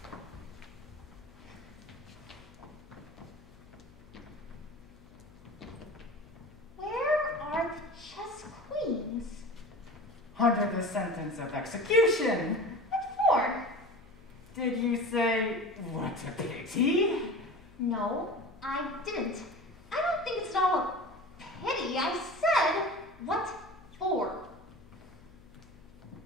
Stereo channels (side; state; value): left; noise; hum, 23 dB below the sound